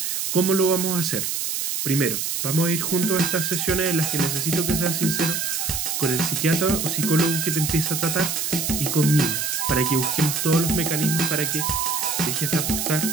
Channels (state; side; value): noise; right; hiss, 2 dB below the sound